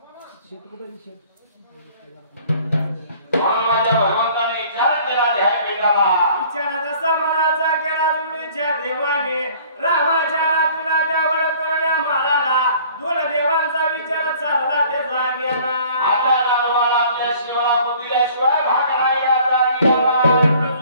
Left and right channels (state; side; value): inverted; both; correlation -0.53